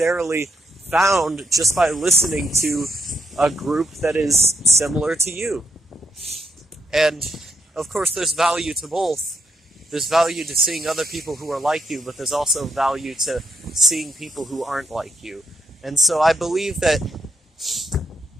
found just by listening to a group that is similar to you. And of course, there's value to both. There's value to seeing other people who are like you, but there's also value to seeing people who aren't like you. And so I believe that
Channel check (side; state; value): both; normal; correlation 0.79